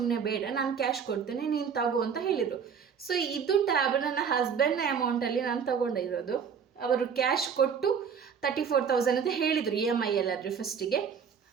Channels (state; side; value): quieter; left; 6.8 dB